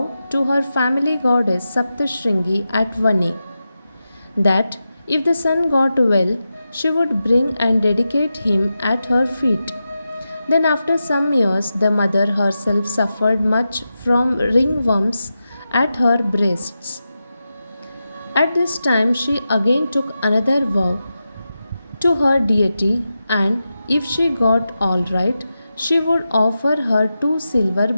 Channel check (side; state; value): both; inverted; correlation -0.91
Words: to her family goddess Saptashringi at Vani that if the son got well, she would bring and dedicate him at her feet. Then, after some years, the mother herself suffered much from ringworms at her breasts. At this time, she again took another vow to her deity, and if she got all right, she would offer her 2 silver